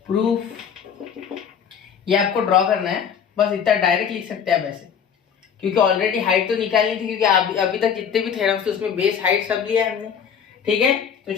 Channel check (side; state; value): right; quieter; 7.6 dB